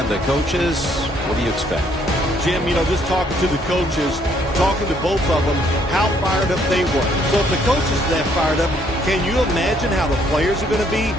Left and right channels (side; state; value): both; normal; correlation 0.67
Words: the coaches. What do you expect? Jim, just talking to the coaches, talking to both of them, how fired up they were. So if the coaches are that fired up, can you imagine how the players are going to be?